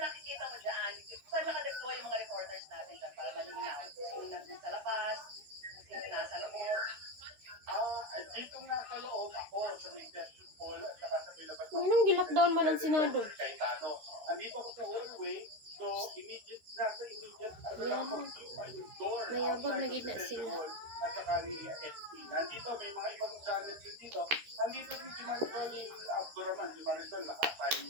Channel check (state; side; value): late; left; 13 ms